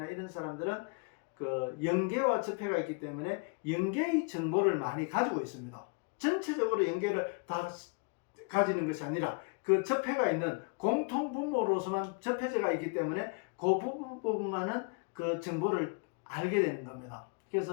이런 사람들은 그 영계와 접해가 있기 때문에 영계의 정보를 많이 가지고 있습니다. 전체적으로 영계를 다 가지는 것이 아니라 그 접해가 있는 공통 분모로서만 접해져가 있기 때문에 그 부분만은 그 정보를 알게 되는 겁니다.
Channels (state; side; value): quieter; right; 33.2 dB